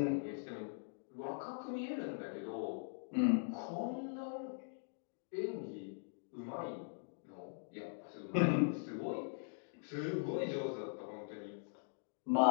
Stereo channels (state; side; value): silent; right; digital silence